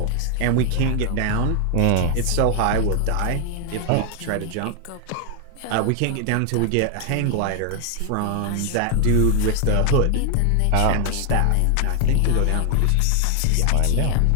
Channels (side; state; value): both; different; correlation 0.00